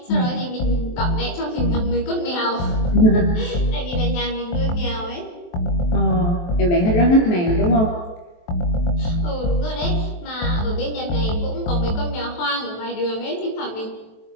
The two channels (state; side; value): late; right; 23 ms